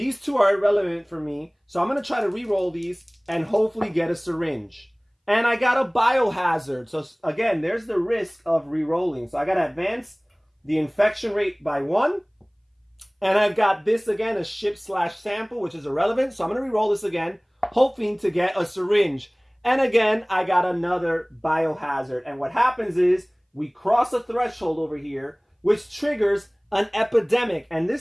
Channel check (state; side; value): identical; both; correlation 1.00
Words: 2 are irrelevant for me. So I'm going to try to re-roll these and hopefully get a syringe. And I got a biohazard. So again, there's the risk of re-rolling. So I got to advance the infection rate by 1. And I've got this again, a ship / sample, which is irrelevant. So I'm going to re-roll this again, hoping to get a syringe. And again, I got another biohazard. And what happens is we cross a threshold over here, which triggers an epidemic. And